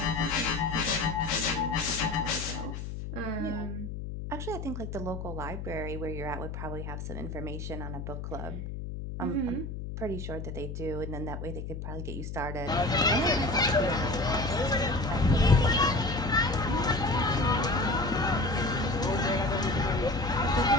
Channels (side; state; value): left; noise; hum, 7 dB below the sound